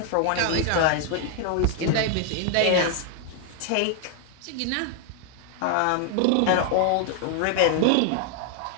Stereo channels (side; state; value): both; different; correlation 0.00